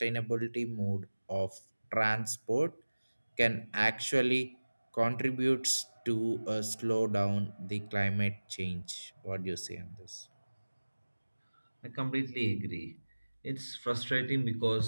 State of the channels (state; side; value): inverted; both; correlation -1.00